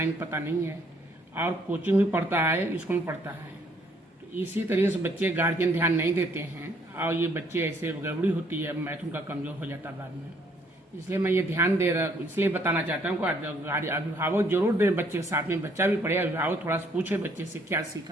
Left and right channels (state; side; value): normal; both; correlation 0.65